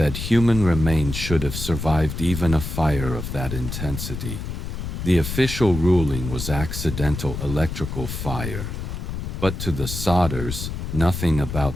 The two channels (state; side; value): noise; left; rumble, 6 dB below the sound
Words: human remains should have survived even a fire of that intensity. The official ruling was accidental electrical fire. But to the Sodders, nothing